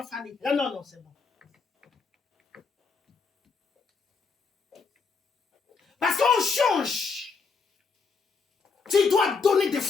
Fanny. Ah non, c'est bon. Parce qu'on change. Tu dois donner des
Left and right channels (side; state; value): right; quieter; 5.0 dB